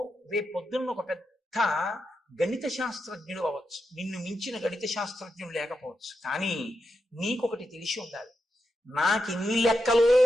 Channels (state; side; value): normal; both; correlation 0.86